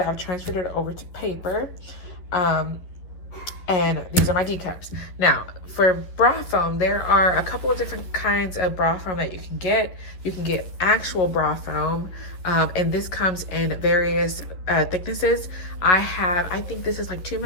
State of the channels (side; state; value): right; late; 11 ms